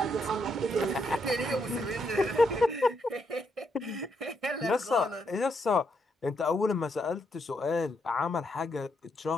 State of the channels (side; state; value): both; normal; correlation 0.77